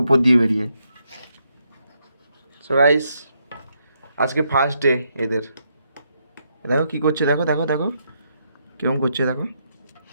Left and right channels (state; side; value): inverted; both; correlation -0.78